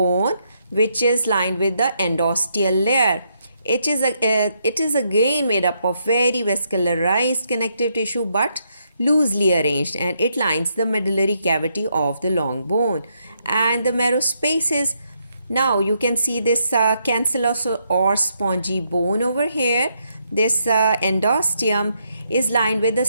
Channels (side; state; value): both; inverted; correlation -0.77